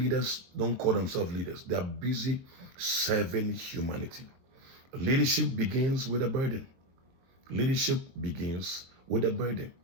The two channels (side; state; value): left; late; 22 ms